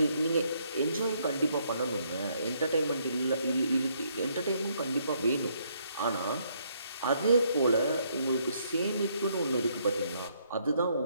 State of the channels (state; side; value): inverted; both; correlation -0.70